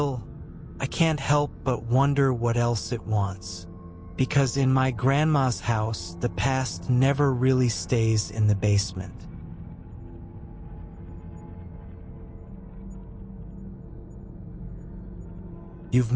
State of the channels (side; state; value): both; identical; correlation 1.00